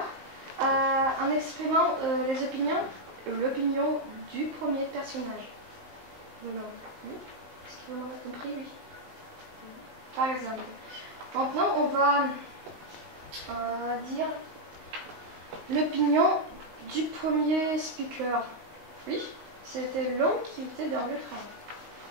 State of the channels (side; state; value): left; late; 19 ms